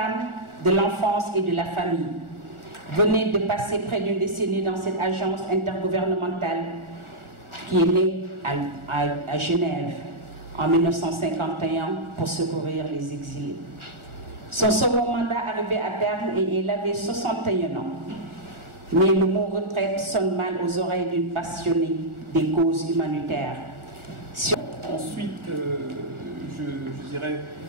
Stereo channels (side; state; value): left; late; 1.4 ms